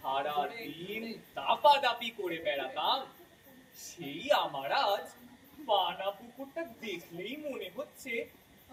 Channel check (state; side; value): identical; both; correlation 1.00